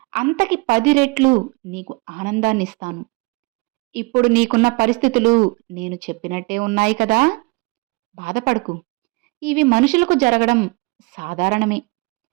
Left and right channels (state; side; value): quieter; left; 26.8 dB